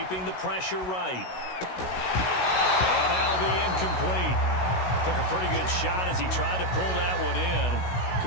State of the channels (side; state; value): right; late; 16 ms